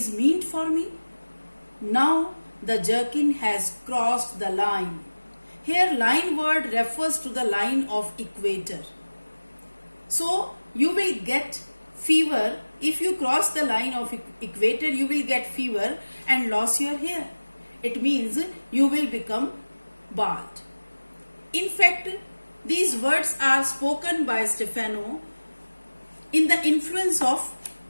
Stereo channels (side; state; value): both; inverted; correlation -1.00